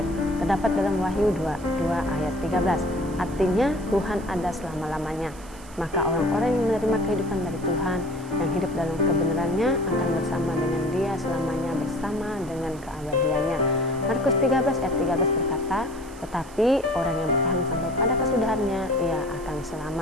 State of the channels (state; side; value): noise; right; hiss, 21 dB below the sound